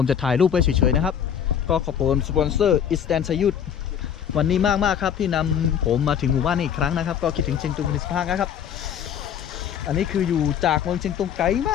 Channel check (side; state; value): right; quieter; 8.6 dB